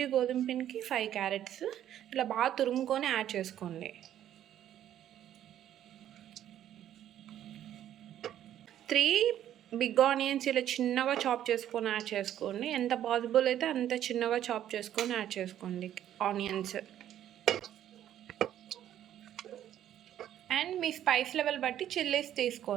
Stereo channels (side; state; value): left; quieter; 11.3 dB